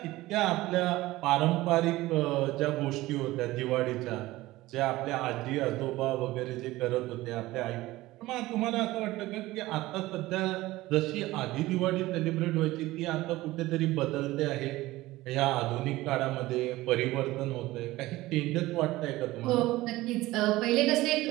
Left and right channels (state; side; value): quieter; left; 18.0 dB